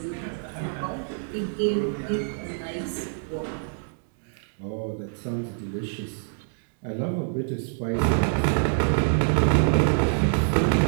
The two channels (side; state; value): left; silent; digital silence